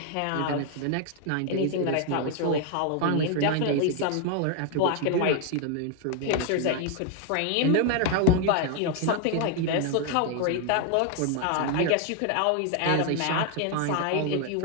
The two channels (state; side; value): different; both; correlation 0.00